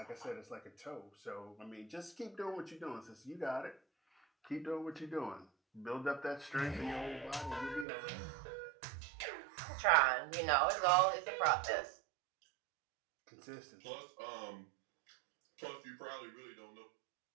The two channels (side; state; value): left; drops out; at 7.9 s